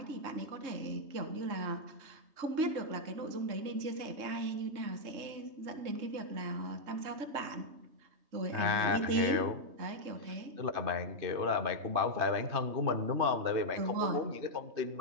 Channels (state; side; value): late; left; 3.2 ms